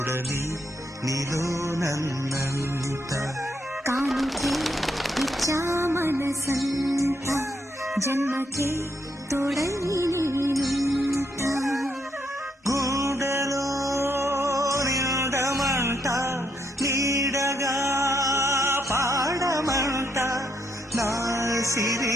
నీలో నన్నంత కానుకే ఇచ్చా మనసంత జన్మకే తోడై నేనుంట గుండెలో నిండమంట నీడగా పాడమంట నా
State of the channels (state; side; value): normal; both; correlation 0.76